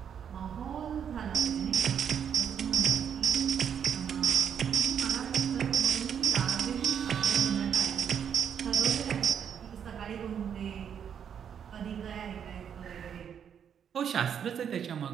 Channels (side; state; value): left; quieter; 8.2 dB